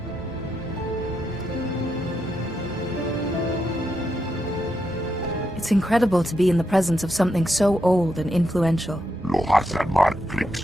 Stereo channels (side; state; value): both; normal; correlation 0.83